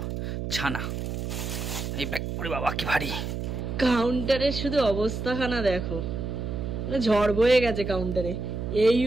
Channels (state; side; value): noise; right; hum, 4 dB below the sound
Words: ছানা। এই ব্যাগ করে বাবা কি ভারী। কাউন্টারের শুধু অবস্থাখানা দেখো, ঝড় বয়ে গেছে কাউন্টারে, এই